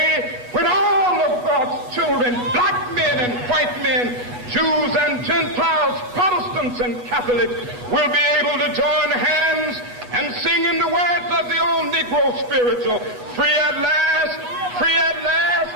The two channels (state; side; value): late; left; 8.2 ms